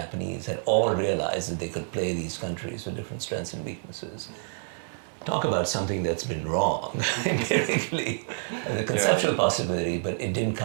had all realized that they could play these countries with different strengths and weaknesses. Talk about something that's been wrong empirically, the conceptual possibility, but it didn't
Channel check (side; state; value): left; silent; 56 dB below the other